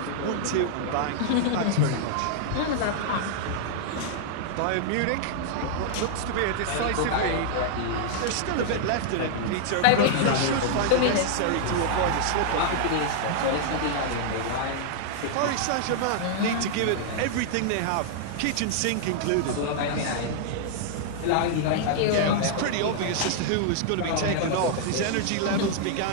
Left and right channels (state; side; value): different; both; correlation -0.01